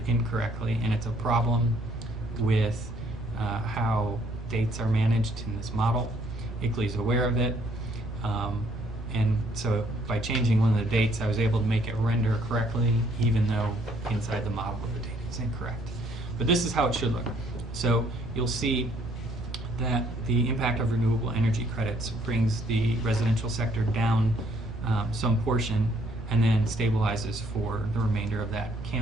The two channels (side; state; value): both; normal; correlation 0.65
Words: incorrectly, and it's a problem with how dates are managed in this model. ICLEI's aware of it, and so by changing one of the dates, I was able to make it render correctly, even though inside the model the data is incorrect. But this is how it should look. So you'll see that the impact of renewable energy credits brings the residential sector down some portion and then stabilizes for the remainder of that